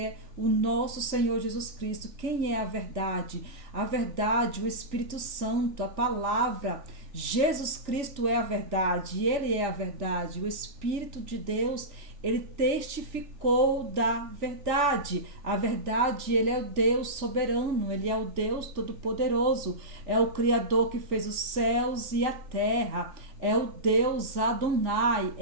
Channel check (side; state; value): left; late; 3.4 ms